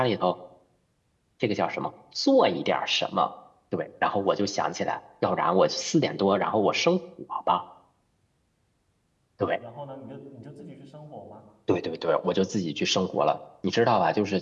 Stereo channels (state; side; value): identical; both; correlation 1.00